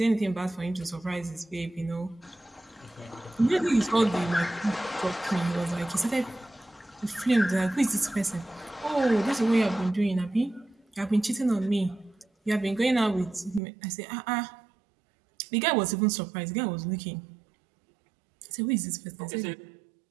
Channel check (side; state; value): left; drops out; at 13.6 s